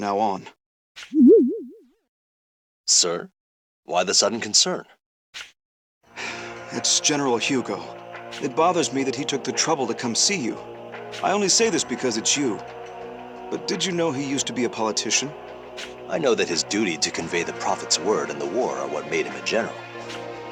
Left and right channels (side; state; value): both; identical; correlation 1.00